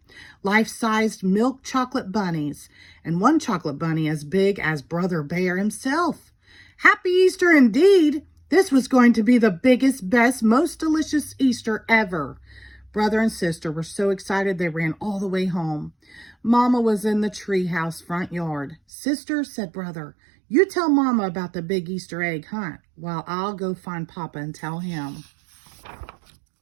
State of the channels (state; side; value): drops out; left; at 18.8 s